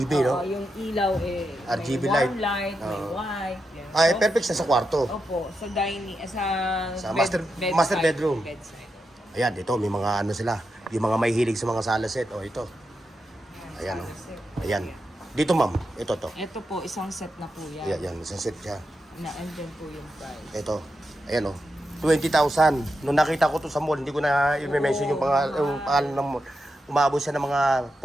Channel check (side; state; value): both; normal; correlation 0.87